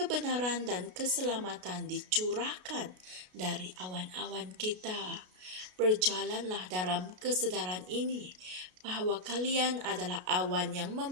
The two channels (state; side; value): late; left; 33 ms